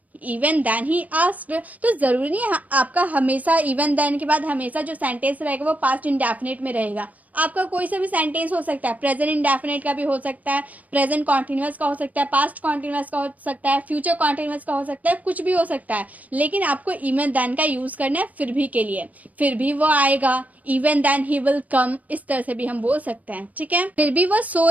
Even then he asked. तो जरूरी नहीं है आपका हमेशा इवन देन के बाद हमेशा जो सेंटेंस रहेगा वो पास्ट इंडेफिनिट में रहेगा। आपका कोई सा भी सेंटेंस हो सकता है, प्रेजेंट इंडेफिनिट का भी हो सकता है, प्रेजेंट कॉन्टिन्यूअस का हो सकता है, पास्ट कॉन्टिन्यूअस का हो सकता है, फ्यूचर कॉन्टिन्यूअस का हो सकता है, कुछ भी हो सकता है। लेकिन आपको इवन देन का यूज करना है फिर भी के लिए। फिर भी वो आएगा, even then he will come, इस तरह से भी हम बोल सकते हैं। ठीक है, फिर भी वह सो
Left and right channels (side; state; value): left; late; 0.075 ms